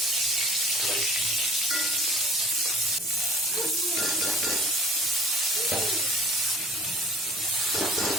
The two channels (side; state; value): both; normal; correlation 0.48